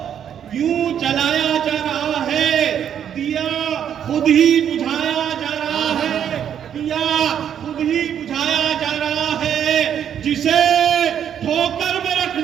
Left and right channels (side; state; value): left; quieter; 9.0 dB